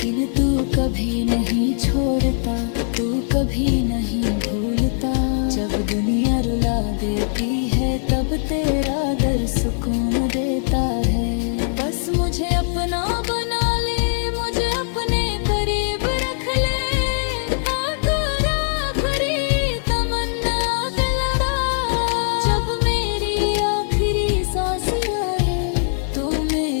तू कभी नहीं छोड़ता, तू कभी नहीं भूलता। जब दुनिया रुला देती है तब तेरा दर सुकून देता है। बस मुझे अपना बना ले, मुझे अपने करीब रख ले, आकर आखिरी तमन्ना दिलवा। जब मेरी आखिरी सांस आए तो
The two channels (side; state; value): right; silent; 65 dB below the other